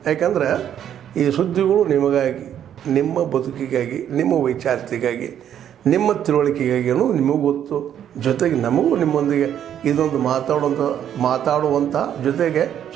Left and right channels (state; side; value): quieter; left; 9.9 dB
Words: ಯಾಕಂದರೆ ಈ ಸುದ್ದಿಗಳು ನಿಮಗಾಗಿ, ನಿಮ್ಮ ಬದುಕಿಗಾಗಿ, ನಿಮ್ಮ ವೈಚಾರಿಕೆಗಾಗಿ, ನಿಮ್ಮ ತಿಳುವಳಿಕೆಗಾಗಿ ಅನ್ನೋದು ನಿಮಗೂ ಗೊತ್ತು. ಜೊತೆಗೆ ನಮಗೂ ನಿಮ್ಮೊಂದಿಗೆ ಇದೊಂದು ಮಾತಾಡುವಂಥ ಜೊತೆಗೆ